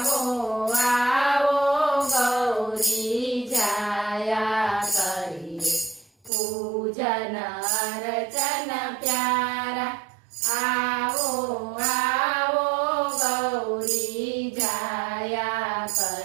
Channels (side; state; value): left; drops out; at 6.3 s